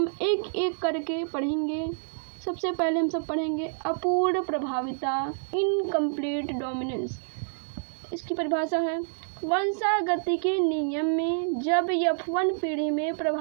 एक एक करके पढ़ेंगे। सबसे पहले हम सब पढ़ेंगे अपूर्ण प्रभाविता, इनकम्प्लीट डोमिनेंस। इसकी परिभाषा है, वंशागति के नियम में जब F1 पीढ़ी में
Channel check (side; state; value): left; silent; digital silence